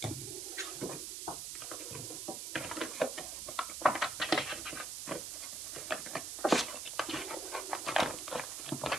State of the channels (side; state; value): right; noise; hiss, 4 dB below the sound